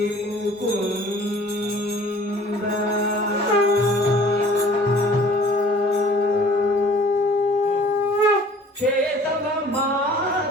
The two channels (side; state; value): both; normal; correlation 0.51